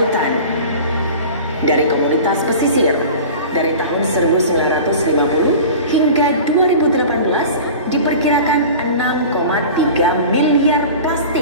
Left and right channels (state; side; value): inverted; both; correlation -0.37